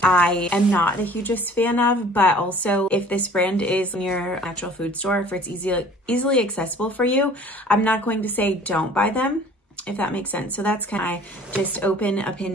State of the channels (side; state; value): both; normal; correlation 0.50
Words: I am not the hugest fan of, but also if this brand is in your natural food store, if it's easily accessible for you, I'm not going to say don't buy them, if that makes sense. So that's kind of my just open